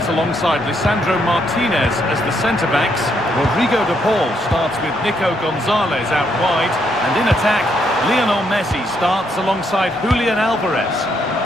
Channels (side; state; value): both; normal; correlation 0.75